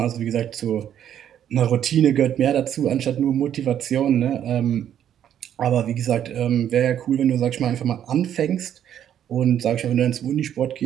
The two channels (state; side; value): quieter; left; 10.0 dB